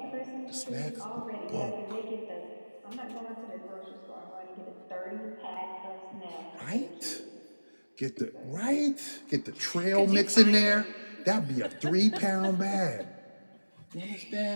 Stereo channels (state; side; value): inverted; both; correlation -1.00